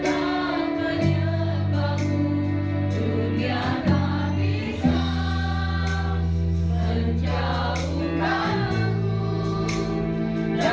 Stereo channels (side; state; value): both; identical; correlation 1.00